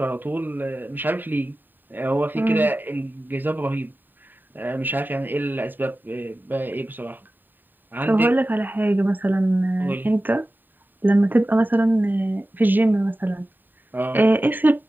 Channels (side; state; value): left; late; 0.091 ms